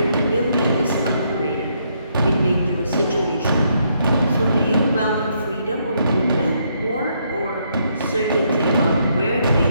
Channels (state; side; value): inverted; both; correlation -0.74